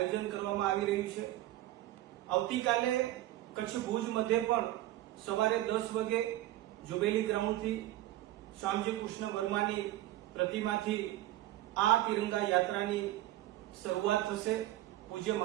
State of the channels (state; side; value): quieter; left; 15.1 dB